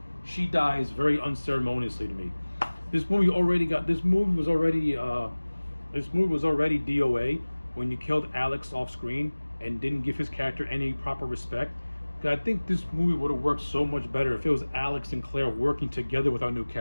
She dies very unceremoniously to me. This movie was already DOA when you killed Alex off screen and didn't give his character any proper respect. I think this movie would have worked so much better if it was Alex and Claire working together with our new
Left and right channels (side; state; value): both; inverted; correlation -1.00